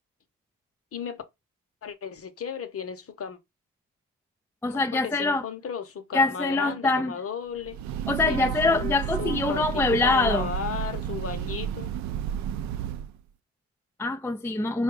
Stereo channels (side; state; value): both; normal; correlation 0.41